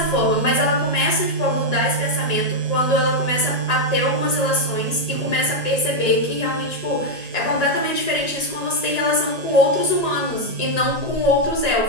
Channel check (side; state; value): left; late; 1.8 ms